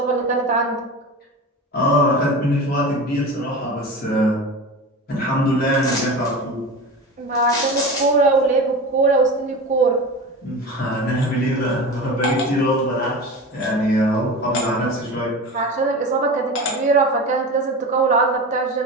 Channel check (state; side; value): normal; both; correlation 0.29